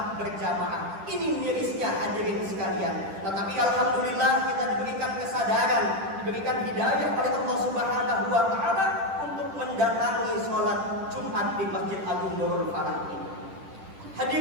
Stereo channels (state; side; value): late; left; 10 ms